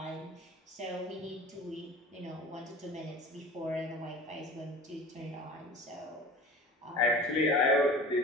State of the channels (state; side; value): normal; both; correlation 0.39